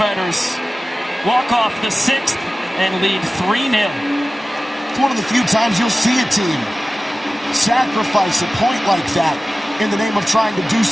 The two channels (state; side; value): normal; both; correlation 0.96